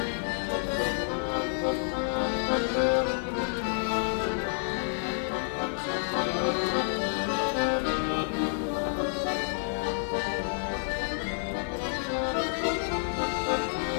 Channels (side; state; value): right; silent; digital silence